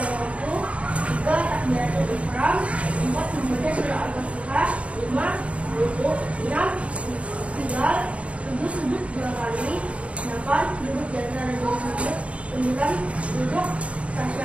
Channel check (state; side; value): late; left; 0.063 ms